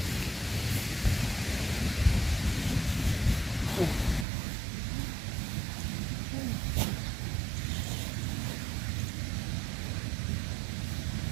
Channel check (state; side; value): drops out; left; at 4.2 s